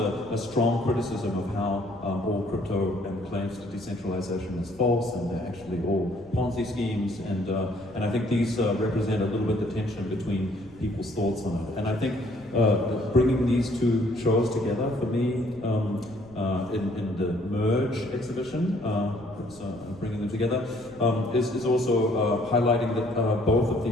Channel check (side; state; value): left; noise; rumble, 24 dB below the sound